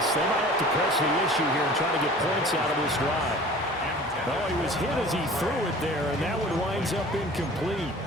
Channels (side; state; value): both; normal; correlation 0.44